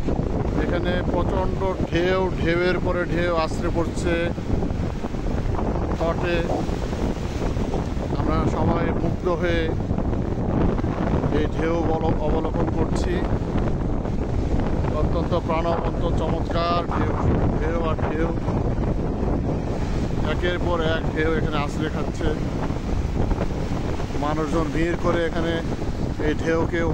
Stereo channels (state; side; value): identical; both; correlation 1.00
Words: এখানে প্রচণ্ড ঢেউয়ের পরে ঢেউ আছড়ে পড়ছে তটে। আমরা সবাই মুগ্ধ হয়ে এই ঢেউ অবলোকন করছি। অত্যন্ত প্রাণবন্ত চমৎকার ঢেউ আর ঢেউ, একের পর এক ঢেউ এখানে আছড়ে খাচ্ছে। মানুষজন ভিড় করে এখানে এই ঢেউকে